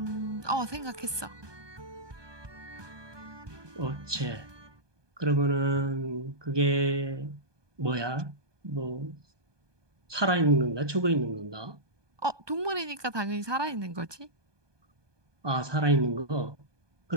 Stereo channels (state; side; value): late; left; 1.2 ms